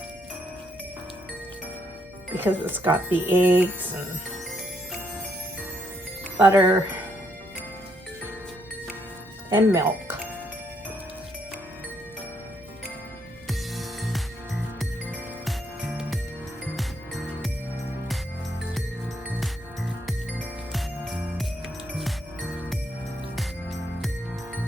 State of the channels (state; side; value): normal; both; correlation 0.74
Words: because it's got the eggs and butter and milk.